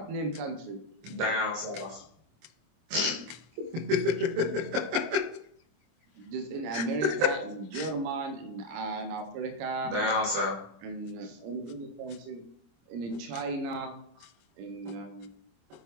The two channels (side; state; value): left; late; 25 ms